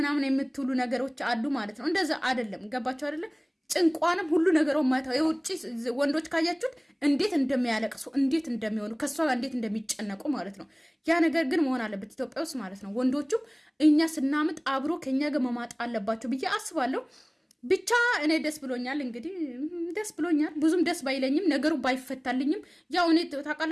የምትሉ ነገሮች አሉ ማለት ነው። እንደዛ አይደለም። ገባችሁ አይደለም? ጭንቋንም ሁሉ ነገሩ ማታ የውጪ ወንዶች ካያችሁት እንዴት እንደሚያለቅሱ እንዴት እንደሚሆኑ ከሷ እንዴት እንደሚጨነቁ ማለት ነው። ያ ነገር ግን መሆን አለበት ኢትዮጵያ ውስጥ ማለት ነው። ወንዶቹም እኛ ስናምጥ አብሮ ከኛ ጋር መማጥ አለባቸው ብዬ አስባለሁ። ብቻ እኔ ደስ ብሎኛል። እንግዲህ ደስ ብሎኛል። ብዙም ደስ ባይለኝም ነገሩ ባይፈታልኝም ያው እኔ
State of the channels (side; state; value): both; identical; correlation 1.00